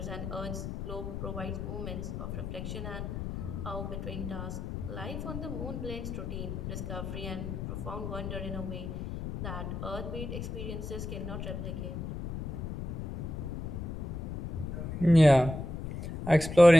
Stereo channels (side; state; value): left; noise; rumble, 6 dB below the sound